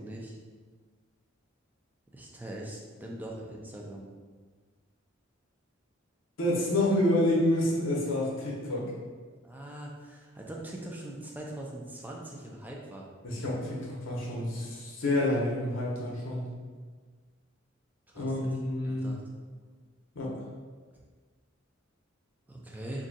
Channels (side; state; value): both; normal; correlation 0.54